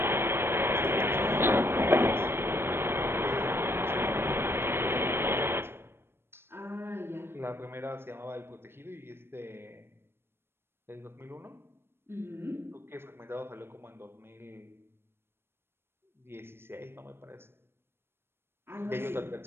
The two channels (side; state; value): left; late; 0.12 ms